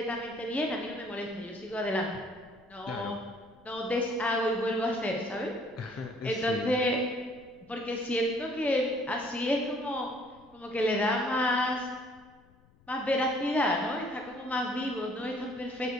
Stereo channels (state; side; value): noise; left; rumble, 28 dB below the sound